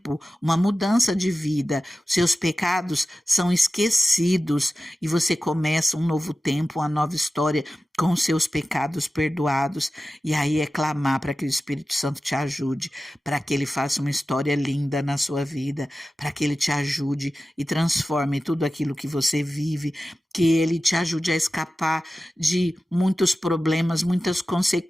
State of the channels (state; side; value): normal; both; correlation 0.94